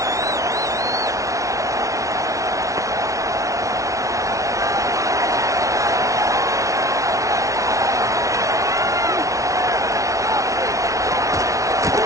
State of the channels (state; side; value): late; left; 0.16 ms